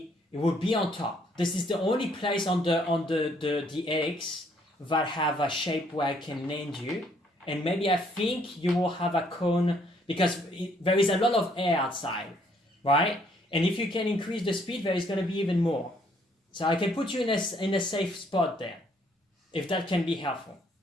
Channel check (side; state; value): both; normal; correlation 0.66